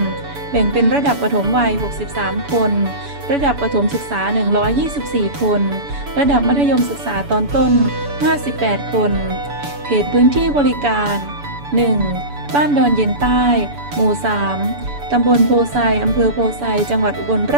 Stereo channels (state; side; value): late; left; 7.0 ms